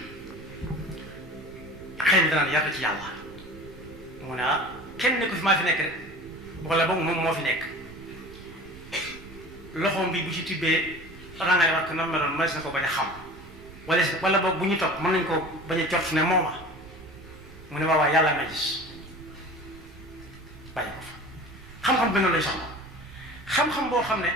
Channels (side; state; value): right; noise; rumble, 18 dB below the sound